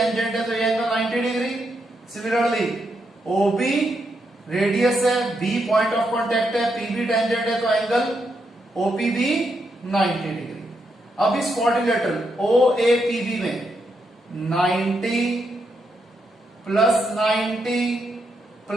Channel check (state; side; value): normal; both; correlation 0.81